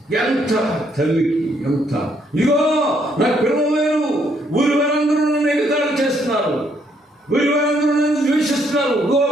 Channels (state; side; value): normal; both; correlation 0.70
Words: ఎంత తల్లికి ఎంత. ఇదిగో నాకు పిల్లలు లేరు, ఊరి వారందరూ నన్ను ఎగతాళి చేస్తున్నారు, ఊరి వారందరూ నన్ను ద్వేషిస్తున్నారు,